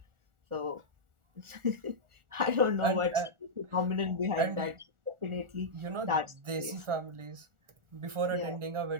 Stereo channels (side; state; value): left; late; 1.4 ms